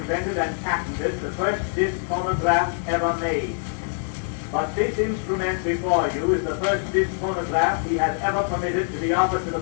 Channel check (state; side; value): silent; right; digital silence